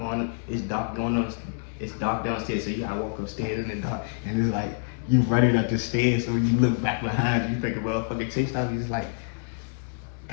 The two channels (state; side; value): silent; right; digital silence